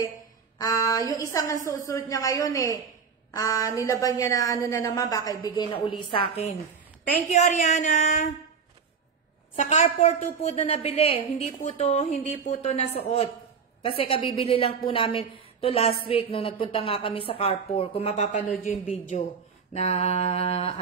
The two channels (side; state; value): left; quieter; 6.1 dB